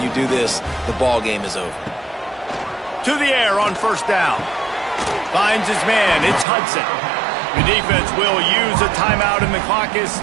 you do this, the ball game is over. To the air on 1st down. Finds his man. It's Hudson. The defense will use a timeout, and the clock is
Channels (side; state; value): left; drops out; at 6.5 s